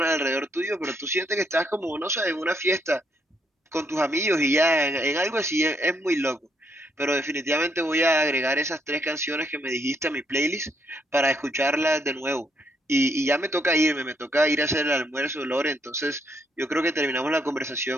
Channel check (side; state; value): both; normal; correlation 0.74